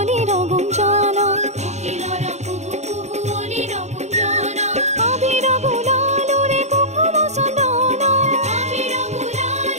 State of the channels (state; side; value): late; left; 0.33 ms